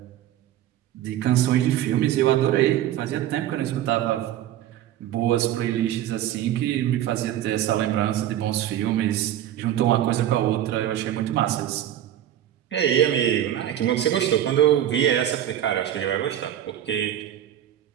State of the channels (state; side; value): quieter; left; 11.8 dB